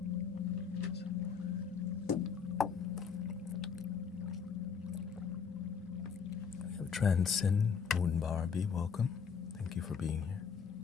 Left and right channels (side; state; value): right; quieter; 6.3 dB